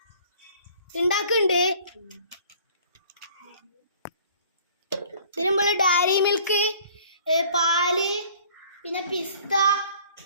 ഉണ്ടാക്കുന്നുണ്ട്. ഇതിന് നമ്മൾ ഡയറി മിൽക്ക്, പാല്, പിന്നെ പിസ്ത,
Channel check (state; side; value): inverted; both; correlation -0.53